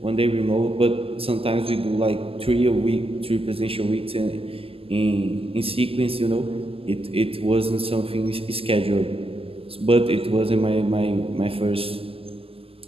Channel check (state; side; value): late; left; 0.28 ms